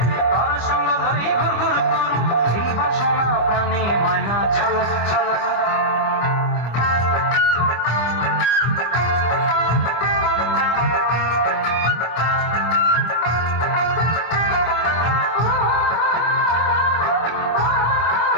তর সঙ্গ লই ঘুরঘুর করুম এই বাসনা প্রাণে। ময়না ছলা ছলা।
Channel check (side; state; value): right; late; 25 ms